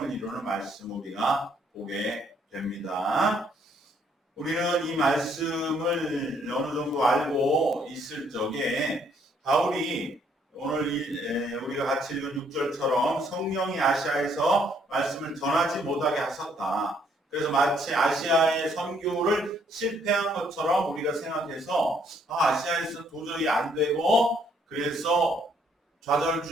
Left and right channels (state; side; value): normal; both; correlation 0.67